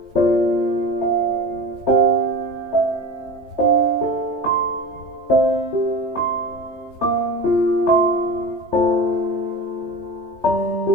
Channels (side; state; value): left; late; 3.2 ms